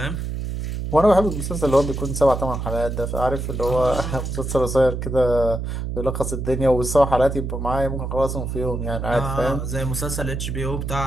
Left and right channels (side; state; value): right; noise; hum, 4 dB below the sound